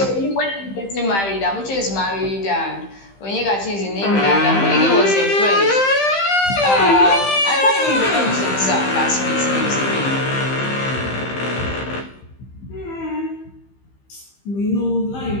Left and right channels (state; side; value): late; right; 15 ms